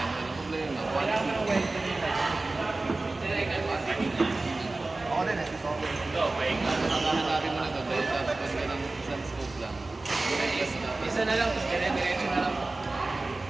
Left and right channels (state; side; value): quieter; left; 3.2 dB